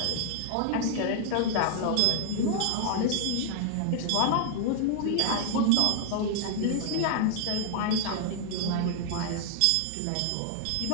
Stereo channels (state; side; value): different; both; correlation -0.01